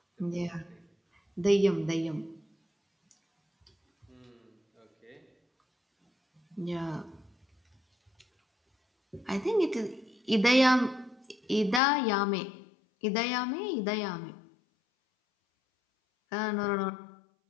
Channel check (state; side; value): drops out; right; at 11.8 s